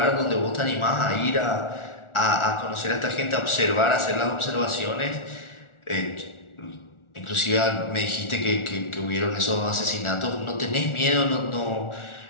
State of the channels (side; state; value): right; late; 1.4 ms